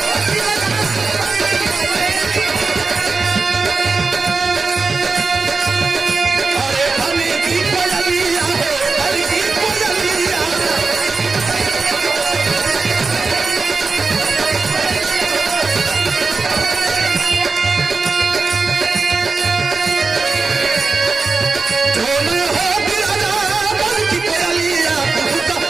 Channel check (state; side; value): quieter; left; 4.2 dB